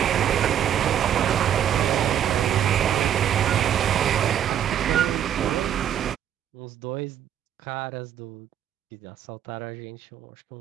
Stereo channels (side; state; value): left; quieter; 9.9 dB